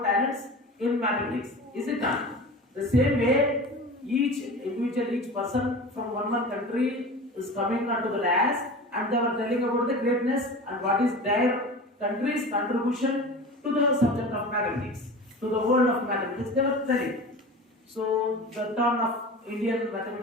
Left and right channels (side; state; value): both; normal; correlation 0.34